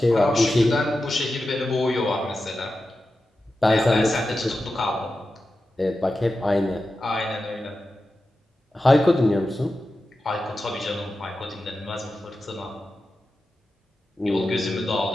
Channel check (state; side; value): normal; both; correlation 0.92